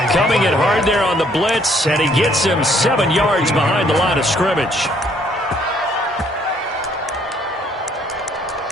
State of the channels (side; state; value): both; normal; correlation 0.65